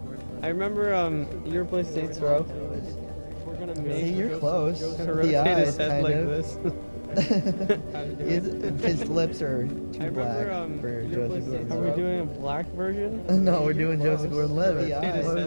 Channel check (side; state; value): both; inverted; correlation -1.00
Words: I remember you ever play Saints Row. We're gonna make. See, you're close. To The rotate eyes, his head kind like of. this. How to do it? His lips are too I black remember, for you ever play Joseph Saints Row? Are we Gordon-Levitt. doing a black version? No, we're doing Joseph Gordon-Levitt. The eyes. Why